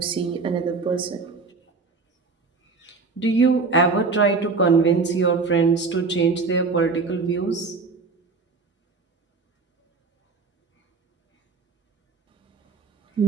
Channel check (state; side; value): quieter; left; 4.3 dB